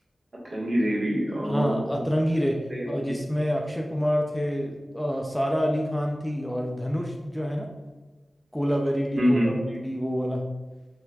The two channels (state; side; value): normal; both; correlation 0.97